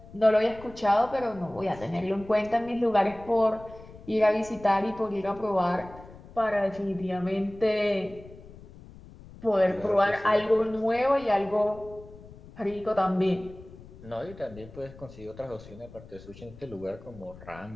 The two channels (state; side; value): noise; left; rumble, 19 dB below the sound